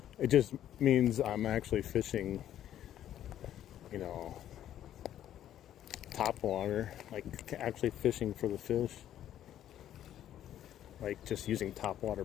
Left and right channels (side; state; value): right; quieter; 11.4 dB